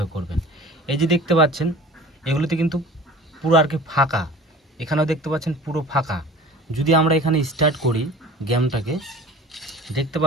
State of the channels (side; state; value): both; normal; correlation 0.41